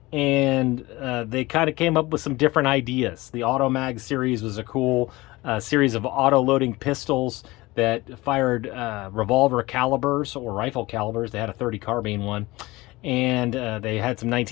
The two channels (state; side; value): quieter; right; 20.8 dB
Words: And they kind of came up with some different ideas. The Automag series was a cool series of auto-loading pistols that fired revolver calibers or rifle calibers. They had a 30 carbine one. And they had some